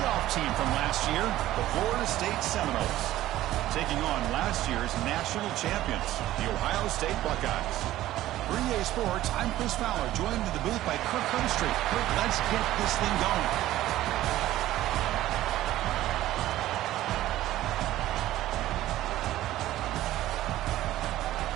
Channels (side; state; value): left; quieter; 14.7 dB